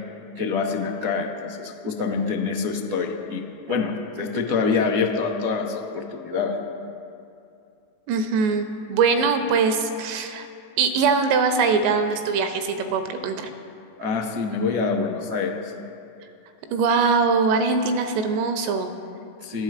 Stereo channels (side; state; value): left; late; 19 ms